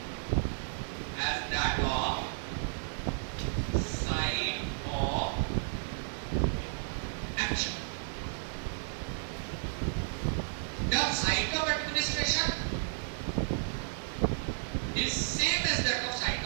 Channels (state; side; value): silent; left; digital silence